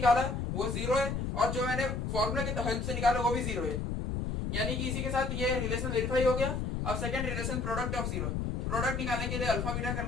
वो 0 है, और जो मैंने फॉर्मूले की हेल्प से निकाला वो भी 0 है, यानी कि इसी के साथ ये रिलेशन वेरीफाई हो गया। अब second relation product of zero, product निकालने के लिए अल्फा बीटा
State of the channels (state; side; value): noise; left; rumble, 2 dB below the sound